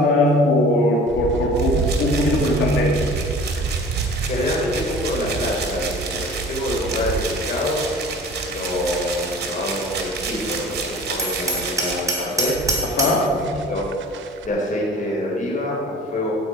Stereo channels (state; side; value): normal; both; correlation 0.44